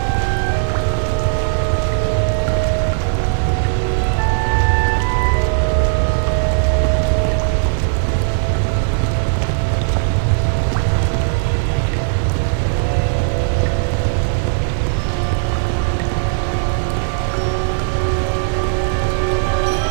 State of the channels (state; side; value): silent; left; digital silence